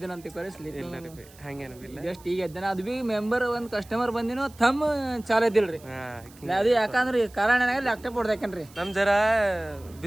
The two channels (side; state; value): right; noise; hiss, 24 dB below the sound